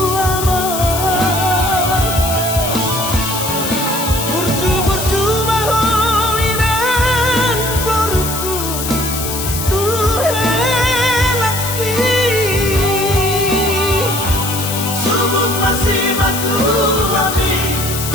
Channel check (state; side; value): noise; left; hiss, 5 dB below the sound